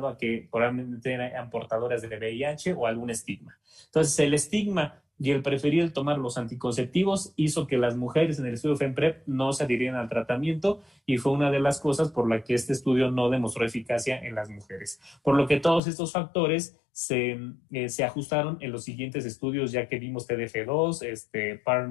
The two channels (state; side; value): drops out; right; at 15.8 s